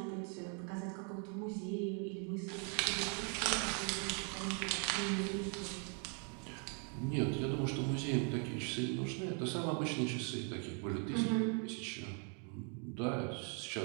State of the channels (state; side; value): quieter; left; 39.3 dB